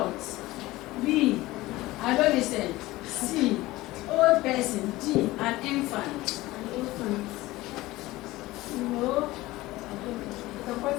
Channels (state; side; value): quieter; right; 18.5 dB